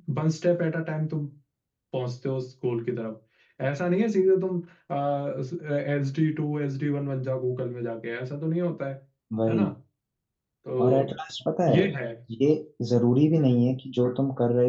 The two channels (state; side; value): identical; both; correlation 1.00